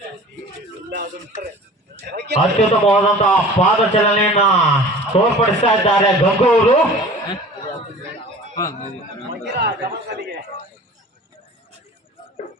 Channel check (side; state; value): both; normal; correlation 0.42